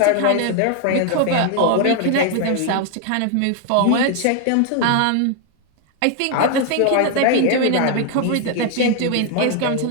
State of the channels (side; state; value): both; different; correlation 0.00